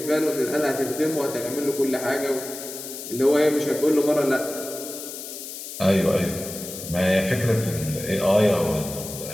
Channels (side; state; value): left; noise; hiss, 10 dB below the sound